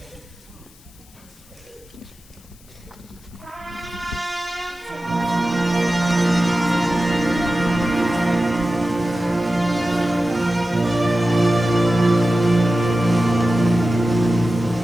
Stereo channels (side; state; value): left; noise; hiss, 27 dB below the sound